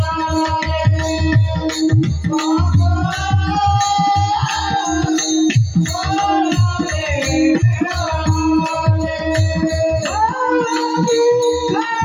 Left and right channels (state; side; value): identical; both; correlation 1.00